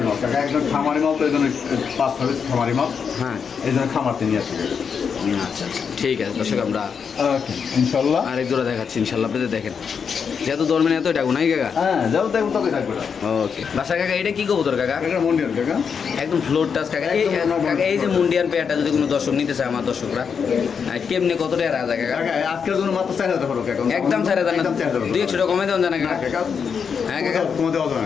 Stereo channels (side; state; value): right; quieter; 6.5 dB